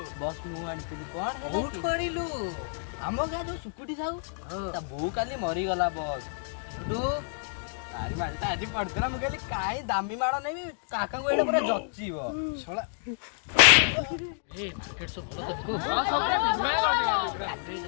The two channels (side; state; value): right; silent; digital silence